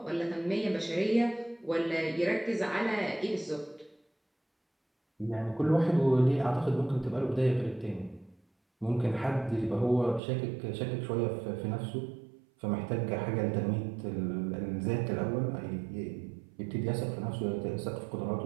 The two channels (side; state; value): left; drops out; at 10.2 s